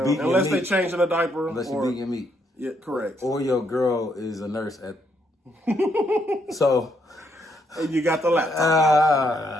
unless they changing a diaper. Unless you beat your meat. Yeah, correct. Or your girl is a nurse at. So. And you got the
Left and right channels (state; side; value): normal; both; correlation 0.74